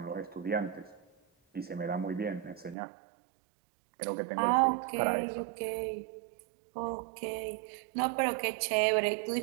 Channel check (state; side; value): drops out; left; at 2.8 s